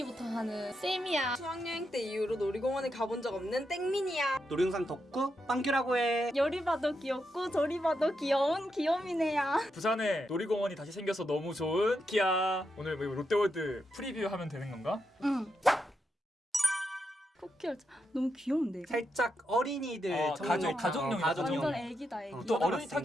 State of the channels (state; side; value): normal; both; correlation 0.84